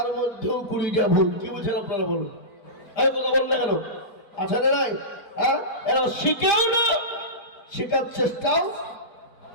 মধ্যেও 20টা ভুল। কি বুঝছেন আপনারা বলুন? এই কথা বল না কেন? আছে না নাই? হ্যাঁ, এরা শিখেও না, শেখার চেষ্টাও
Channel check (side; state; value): right; late; 4.5 ms